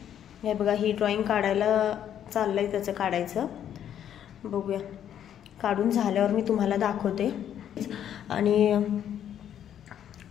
हे बघा, ही ड्रॉइंग काढायला चाललंय त्याचं काढायचं, बघूया। काढून झाल्यावर मी तुम्हाला दाखवते। आणि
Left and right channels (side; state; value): right; quieter; 9.9 dB